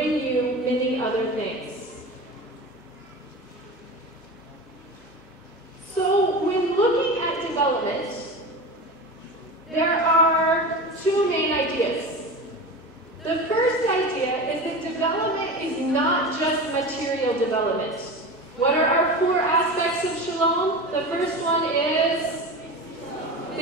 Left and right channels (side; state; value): both; normal; correlation 0.28